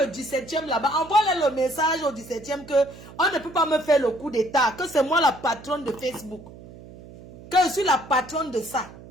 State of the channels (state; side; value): noise; right; hum, 18 dB below the sound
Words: 17e là-bas, envoie-leur le message au 17e que on ne peut pas me faire le coup d'état. Que c'est moi la patronne de Facebook. Que je suis la patronne de ça.